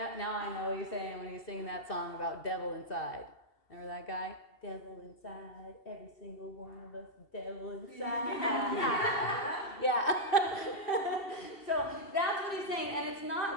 I know what he's saying when he's singing that song about devil inside. Remember that guy? Devil inside, every single one of us, devil inside. Yeah. So that's what he's saying, and it's not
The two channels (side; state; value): right; late; 2.7 ms